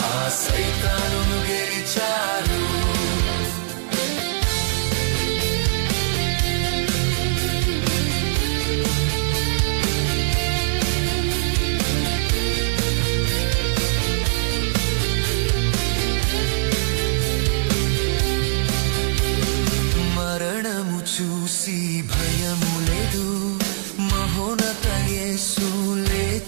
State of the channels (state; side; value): silent; left; digital silence